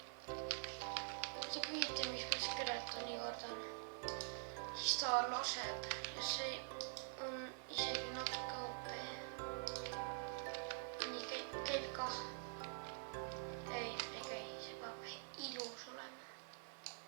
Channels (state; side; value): silent; left; digital silence